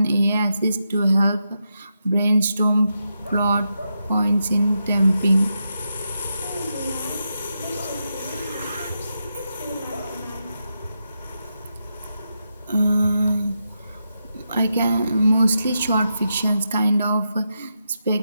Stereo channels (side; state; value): both; inverted; correlation -0.85